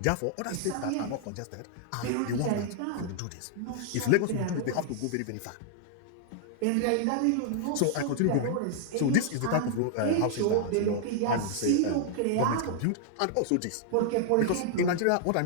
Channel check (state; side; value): different; both; correlation 0.00